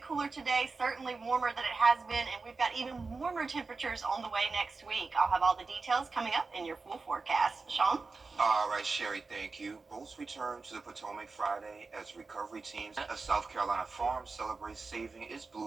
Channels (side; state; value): left; quieter; 4.1 dB